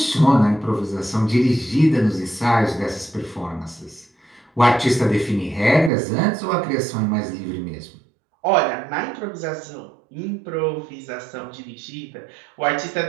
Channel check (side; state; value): left; drops out; at 5.9 s